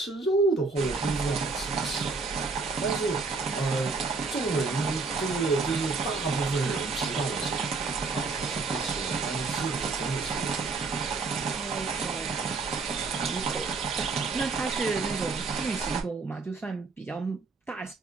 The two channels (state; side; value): quieter; left; 4.2 dB